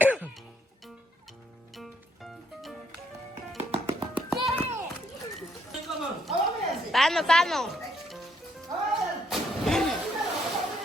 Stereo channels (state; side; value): normal; both; correlation 0.71